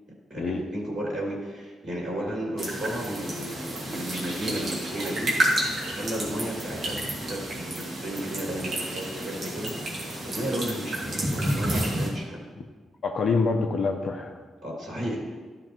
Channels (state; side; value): normal; both; correlation 0.80